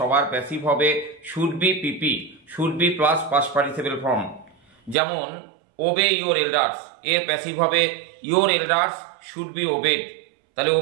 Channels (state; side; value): drops out; left; at 5.0 s